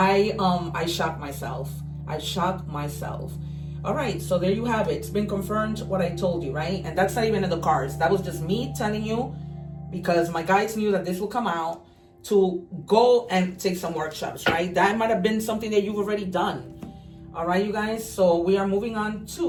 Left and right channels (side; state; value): both; identical; correlation 1.00